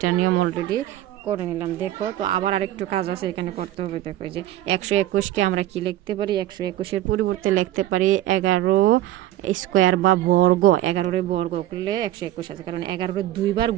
নিয়ম অলরেডি করে নিলাম দেখো। তো আবার আরেকটু কাজ আছে এখানে করতে হবে দেখো, যে 121কে আমরা কি লিখতে পারি, 121-এর পরিবর্তে লিখতে পারি 11 স্কোয়ার বা বর্গ। 11 বর্গ করলে 121 আছে, কারণ 11 দুইবার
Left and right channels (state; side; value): quieter; left; 14.3 dB